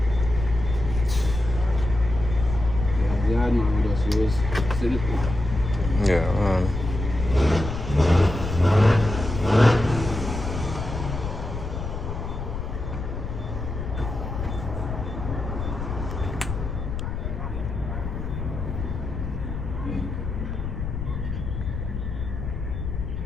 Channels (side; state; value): left; noise; rumble, 5 dB below the sound